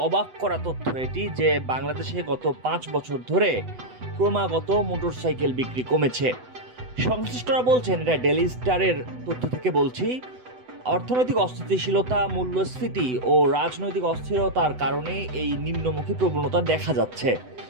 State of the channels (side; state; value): left; late; 8.0 ms